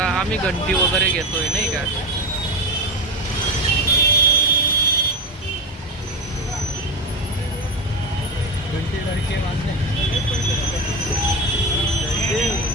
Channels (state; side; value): normal; both; correlation 0.18